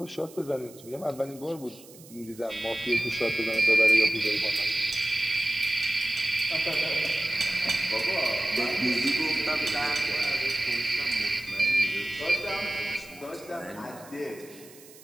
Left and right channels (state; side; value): noise; right; hiss, 21 dB below the sound